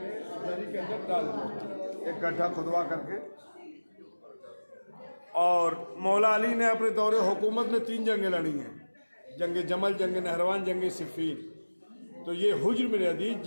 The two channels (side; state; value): both; inverted; correlation -1.00